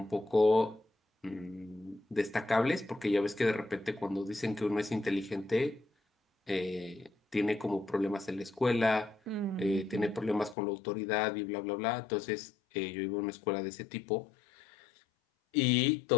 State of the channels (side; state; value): right; drops out; at 10.6 s